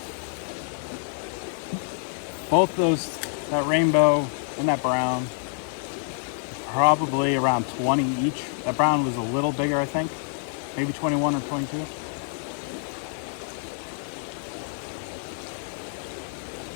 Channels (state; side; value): silent; right; 60 dB below the other